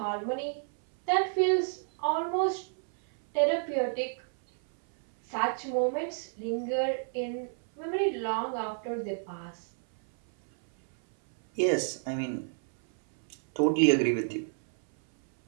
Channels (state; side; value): silent; left; 58 dB below the other